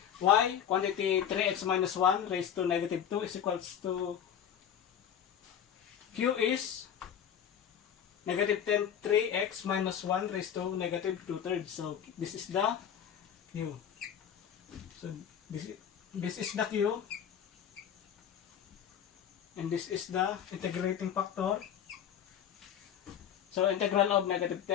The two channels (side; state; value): right; quieter; 9.0 dB